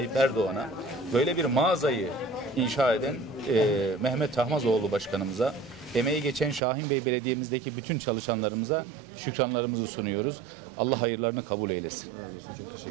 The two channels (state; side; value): drops out; left; at 6.6 s